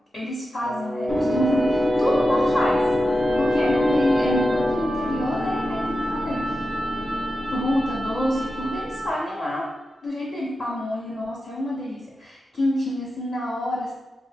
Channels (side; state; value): both; normal; correlation 0.91